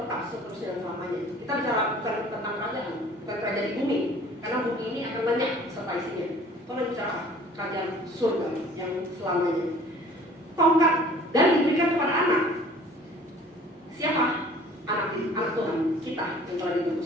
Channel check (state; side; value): normal; both; correlation 0.50